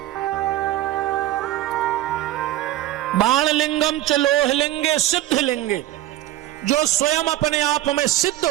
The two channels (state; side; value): quieter; left; 14.6 dB